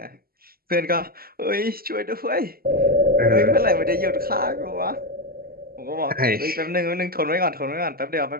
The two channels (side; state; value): left; late; 0.43 ms